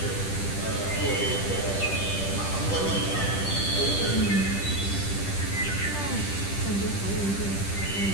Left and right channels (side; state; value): right; late; 10 ms